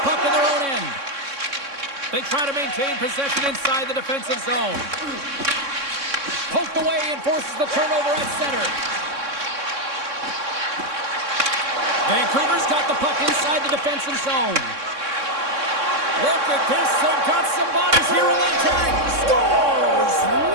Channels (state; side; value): late; left; 3.6 ms